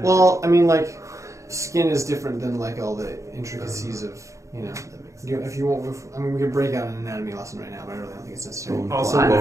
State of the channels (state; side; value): late; left; 0.15 ms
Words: Well, I mean like skin is different than like all the intricacies of That makes sense. if you want. I mean we could break out an anatomy lesson right now, but I really don't think it's necessary. Bone Also, claw. I'm